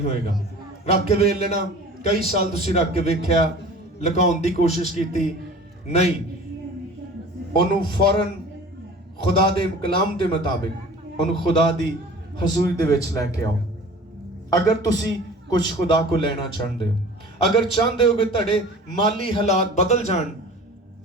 ਹੋਏਗਾ। ਰੱਖ ਕੇ ਵੇਖ ਲੈਣਾ, ਕਈ ਸਾਲ ਤੁਸੀਂ ਰੱਖ ਕੇ ਵੇਖਿਆ, ਲੁਕਾਉਣ ਦੀ ਕੋਸ਼ਿਸ਼ ਕੀਤੀ, ਨਹੀਂ, ਉਹਨੂੰ ਫੌਰਨ ਖੁਦਾ ਦੇ ਕਲਾਮ ਦੇ ਮੁਤਾਬਿਕ ਉਹਨੂੰ ਖੁਦਾ ਦੀ ਹਜ਼ੂਰੀ ਦੇ ਵਿੱਚ ਲੈ ਕੇ ਆਓ। ਅਗਰ ਤੁਸੀਂ ਕੁਝ ਖੁਦਾ ਕੋ ਲੈਣਾ ਚਾਹੁੰਦੇ ਹੋ, ਅਗਰ ਚਾਹੁੰਦੇ ਹੋ ਕਿ ਤੁਹਾਡੇ ਮਾਲੀ ਹਾਲਾਤ ਬਦਲ ਜਾਣ,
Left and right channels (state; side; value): normal; both; correlation 0.43